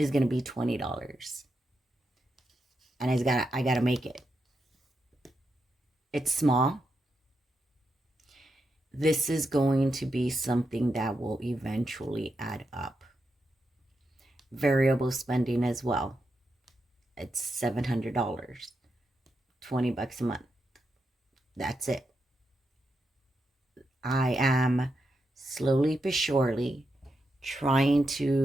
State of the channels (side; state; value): both; normal; correlation 0.85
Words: going to be $20. And I got to make it. It's small. This is going to be something that will eventually add up. Variable spending as well. It's $700. $20 a month. That's it. I am slowly but surely trying